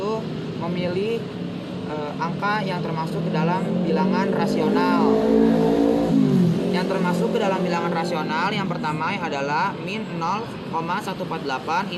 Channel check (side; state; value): both; identical; correlation 1.00